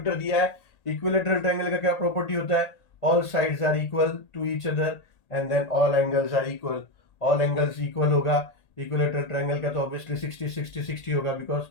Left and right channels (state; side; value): late; right; 1.8 ms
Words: दिया है, इक्विलेटरल ट्रायंगल का क्या प्रॉपर्टी होता है, all sides are equal to each other and then all angles are equal, all angles equal होगा, इक्विलेटरल ट्रायंगल का तो ऑब्वियसली 60 होगा because